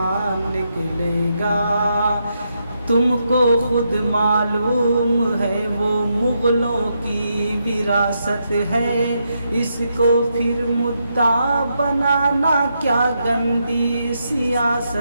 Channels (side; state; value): both; inverted; correlation -0.81